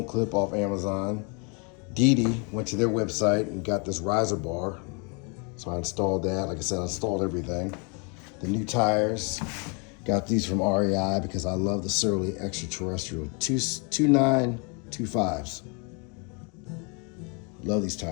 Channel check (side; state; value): right; quieter; 34.1 dB